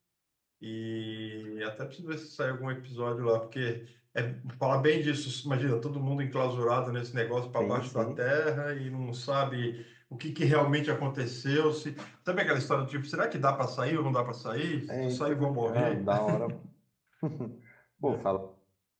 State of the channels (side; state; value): both; identical; correlation 1.00